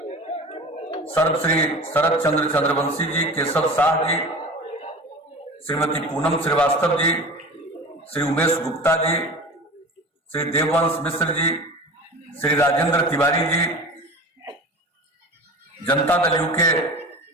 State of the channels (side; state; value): both; normal; correlation 0.35